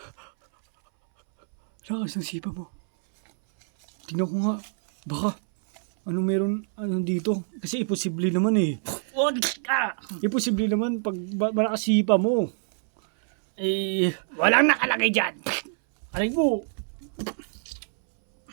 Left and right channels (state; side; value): silent; left; 61 dB below the other